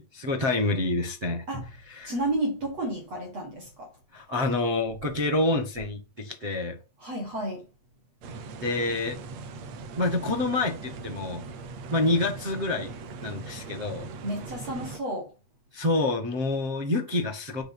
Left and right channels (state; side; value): late; left; 8.2 ms